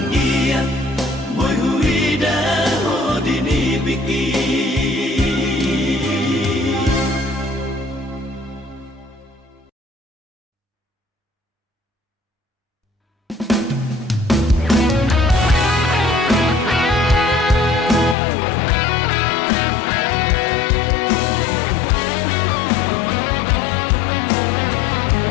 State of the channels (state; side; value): drops out; right; at 18.2 s